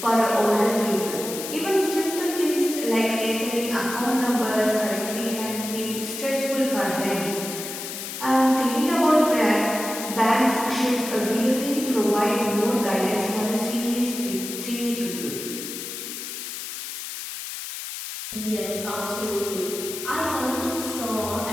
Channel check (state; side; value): noise; left; hiss, 8 dB below the sound